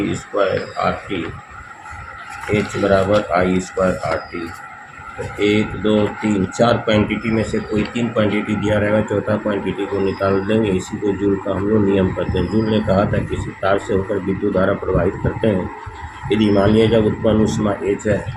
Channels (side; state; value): both; identical; correlation 1.00